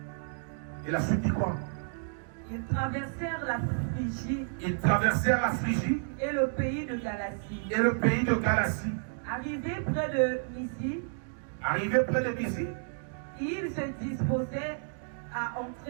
Et la suite dit quoi? Ils traversèrent la Phrygie. Ils traversèrent la Phrygie. Et le pays de Galatie. Et le pays de Galatie. Arrivés près de Mysie. Arrivés près de Mysie. Ils se disposaient à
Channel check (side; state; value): left; silent; digital silence